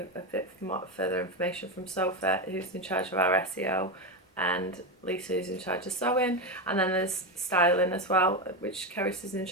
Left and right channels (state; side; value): normal; both; correlation 0.13